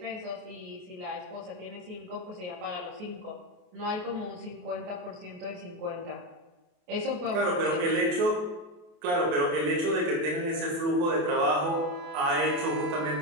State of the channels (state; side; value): late; left; 28 ms